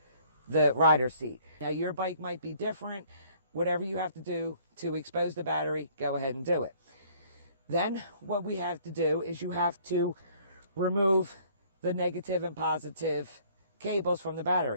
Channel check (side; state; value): both; inverted; correlation -0.58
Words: the rider seat. Now, your bike might be different. Whatever you have to do to expose the battery, go ahead and do it. Then what we have to do is you have to remove the negative and positive cables from the